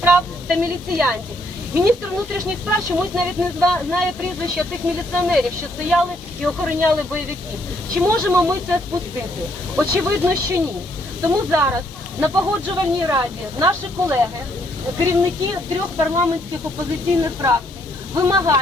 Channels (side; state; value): both; normal; correlation 0.70